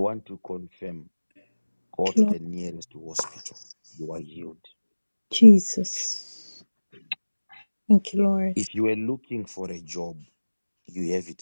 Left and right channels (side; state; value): both; inverted; correlation -1.00